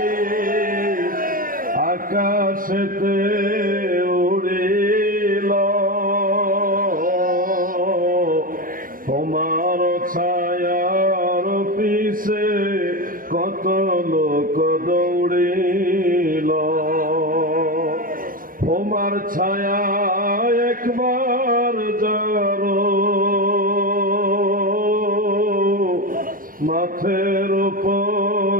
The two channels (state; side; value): late; left; 0.41 ms